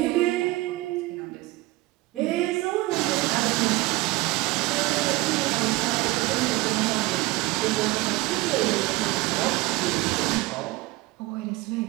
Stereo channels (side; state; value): left; quieter; 20.4 dB